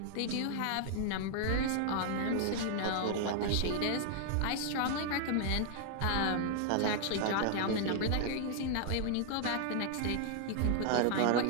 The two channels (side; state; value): both; different; correlation 0.00